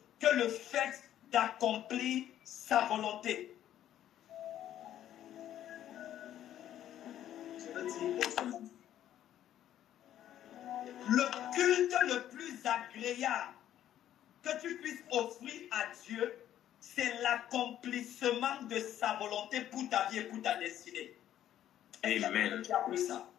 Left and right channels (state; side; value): quieter; right; 11.6 dB